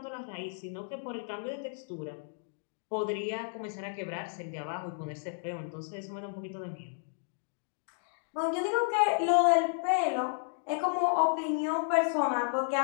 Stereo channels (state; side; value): silent; right; digital silence